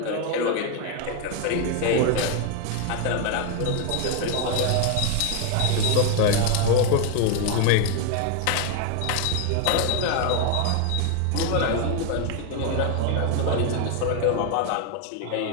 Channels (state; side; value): different; both; correlation 0.01